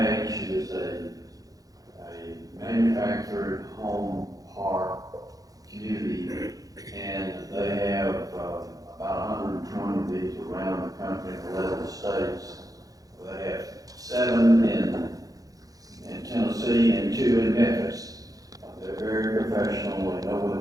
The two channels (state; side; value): late; left; 0.17 ms